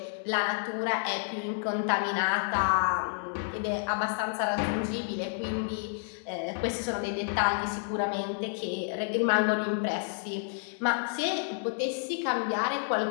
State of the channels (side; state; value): right; silent; digital silence